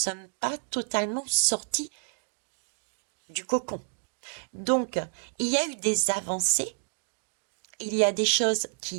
pas totalement sortis du cocon. Donc, il y a eu des avancées, il y a des choses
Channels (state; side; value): silent; left; digital silence